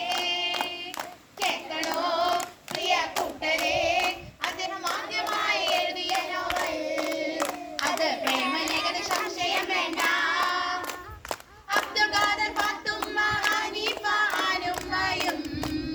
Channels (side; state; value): both; identical; correlation 1.00